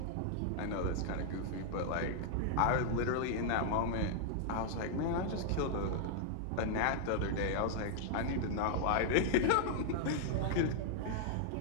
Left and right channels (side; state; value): both; different; correlation -0.01